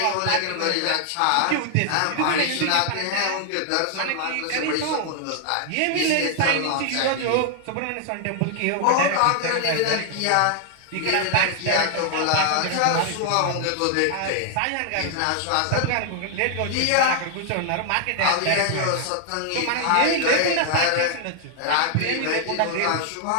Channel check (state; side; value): different; both; correlation 0.00